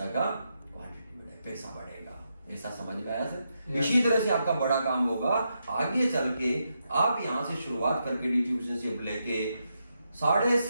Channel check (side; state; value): both; inverted; correlation -0.83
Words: का क्वांटिटी बढ़ेगा, पैसा बढ़ेगा। ऐसा समझ में आया सर? इसी तरह से आपका बड़ा काम होगा आगे चल के। आप यहां से शुरुआत करके डिस्ट्रीब्यूशनशिप लेके